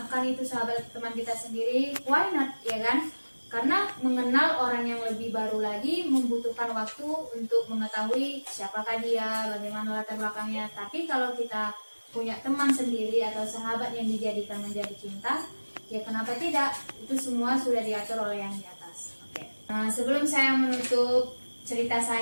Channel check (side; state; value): both; inverted; correlation -1.00